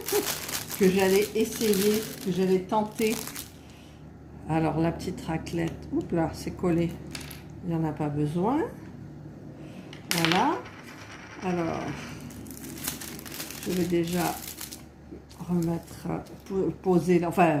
que j'allais essayer, que j'allais tenter. Alors la petite raclette, oups là, c'est collé, il n'y en a pas besoin. Voilà. Alors, je vais déjà remettre, poser,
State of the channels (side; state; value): both; identical; correlation 1.00